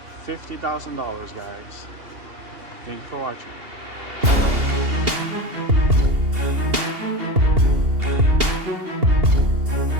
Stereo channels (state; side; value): late; left; 2.8 ms